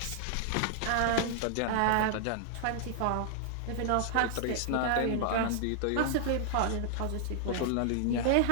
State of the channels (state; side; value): different; both; correlation -0.01